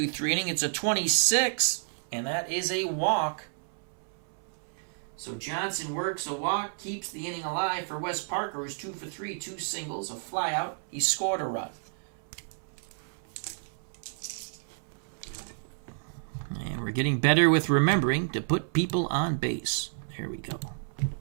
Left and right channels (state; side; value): silent; left; 58 dB below the other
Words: inning. It's a 26, and that is a walk. So Johnson works a walk, keeps the inning alive for Wes Parker, who's 2 for 3, 2 singles, a fly out. He scored a run. And we're getting better with remembering to put people on base. There we go.